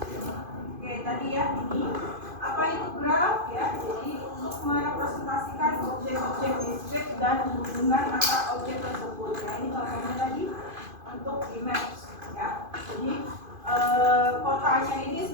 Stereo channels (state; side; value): late; left; 2.5 ms